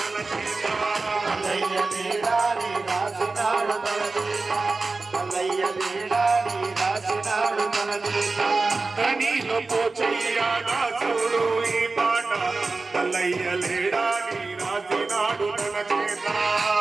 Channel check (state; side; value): quieter; left; 3.8 dB